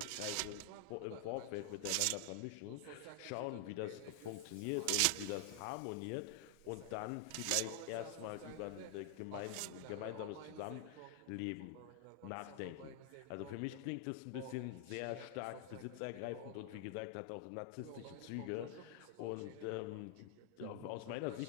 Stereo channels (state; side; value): different; both; correlation 0.00